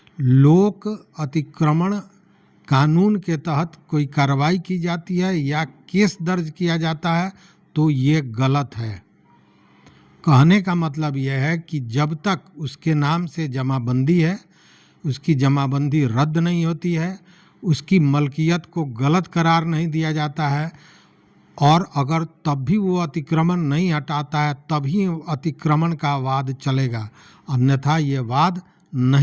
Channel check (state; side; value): identical; both; correlation 1.00